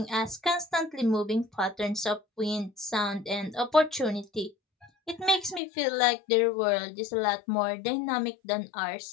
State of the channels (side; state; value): right; drops out; at 5.6 s